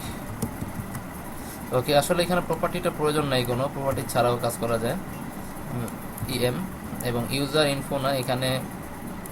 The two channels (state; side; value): identical; both; correlation 1.00